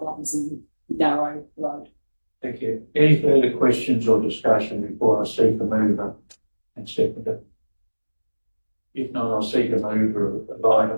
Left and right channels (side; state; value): both; inverted; correlation -1.00